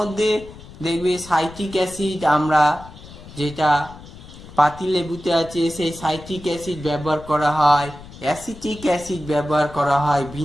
দেখবে সাইট্রিক অ্যাসিড, আমরা যেটা পাতিলেবুতে আছে সেই সাইট্রিক অ্যাসিড ব্যবহার করা হয়, অ্যাসিটিক অ্যাসিড ব্যবহার করা হয়,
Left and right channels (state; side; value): noise; left; rumble, 17 dB below the sound